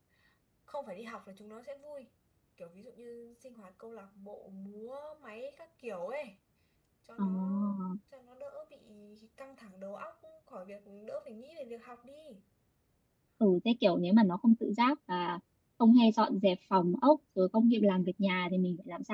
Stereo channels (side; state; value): both; identical; correlation 1.00